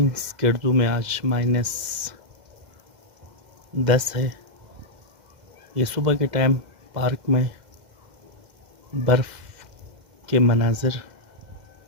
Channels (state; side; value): late; left; 2.1 ms